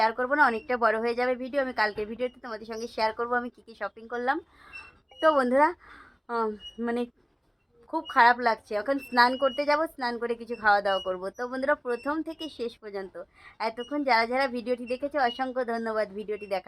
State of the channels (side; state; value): both; identical; correlation 1.00